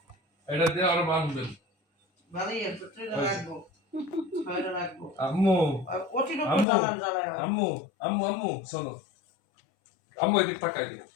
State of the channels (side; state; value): right; drops out; at 6.7 s